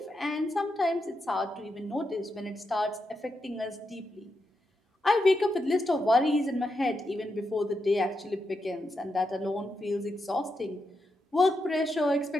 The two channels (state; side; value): normal; both; correlation 0.85